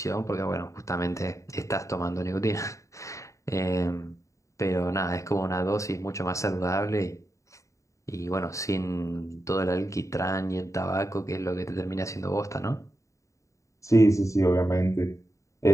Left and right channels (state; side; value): late; right; 0.15 ms